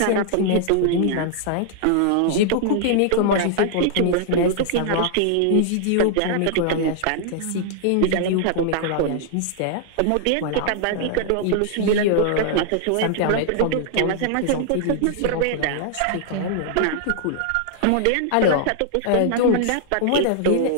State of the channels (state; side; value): different; both; correlation -0.01